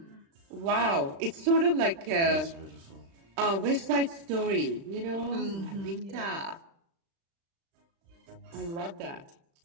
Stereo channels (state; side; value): late; left; 36 ms